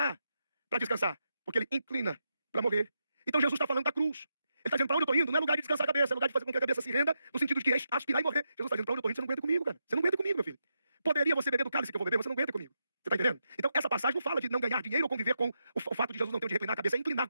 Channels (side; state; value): both; inverted; correlation -0.84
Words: para descansar. Porque ele inclina para morrer. Então Jesus está falando da cruz. Ele está dizendo, para onde eu estou indo? Não é lugar de descansar a cabeça, é lugar de fazer com que a cabeça se renda, no sentido de aspirar e morrer. Jesus está dizendo, para onde eu estou indo? Você não aguenta comigo, cara. Você não aguenta comigo, meu filho. Poderia você beber do cálice que eu vou beber, você não aguenta comigo. Você está entendendo? Então, essa passagem não fala de não ganhar dinheiro ou conviver com o fato de Jesus não ter onde reclinar a cabeça, é inclinar